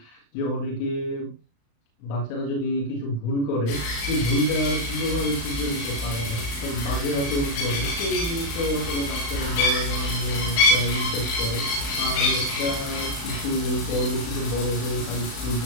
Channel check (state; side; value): late; right; 35 ms